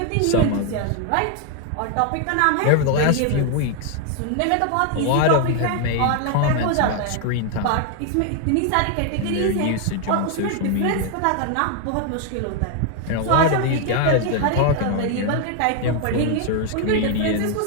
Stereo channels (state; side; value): different; both; correlation 0.00